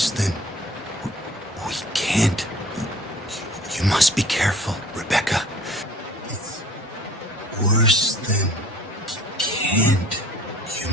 than... We can't. You must be careful, Rebecca. It's worse than... Can't. You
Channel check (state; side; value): normal; both; correlation 0.50